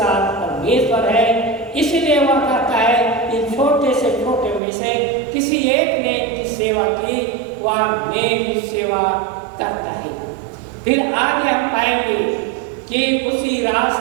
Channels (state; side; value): drops out; left; at 4.6 s